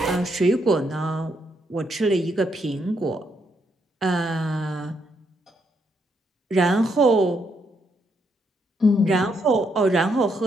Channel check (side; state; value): both; normal; correlation 0.76